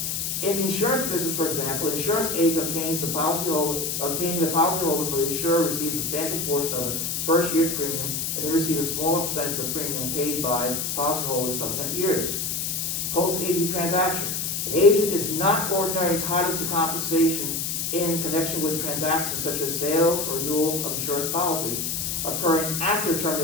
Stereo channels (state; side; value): noise; left; hiss, 1 dB below the sound